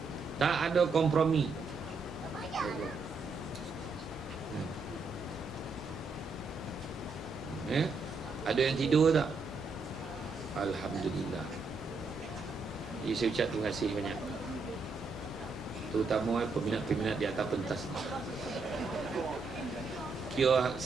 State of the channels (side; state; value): left; quieter; 4.0 dB